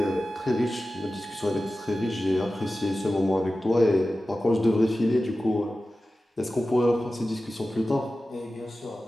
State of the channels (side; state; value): both; normal; correlation 0.95